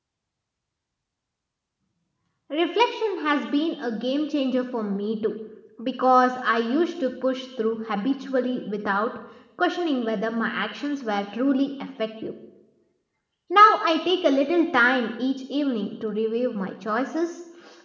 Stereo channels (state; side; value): identical; both; correlation 1.00